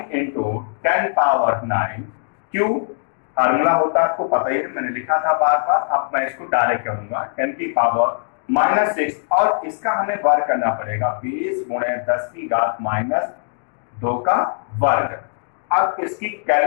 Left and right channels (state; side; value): silent; right; digital silence